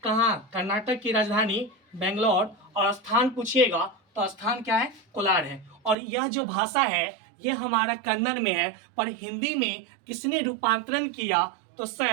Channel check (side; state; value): left; drops out; at 6.0 s